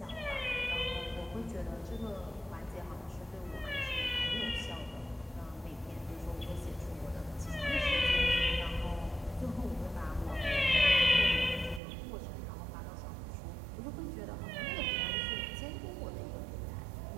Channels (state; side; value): drops out; left; at 11.8 s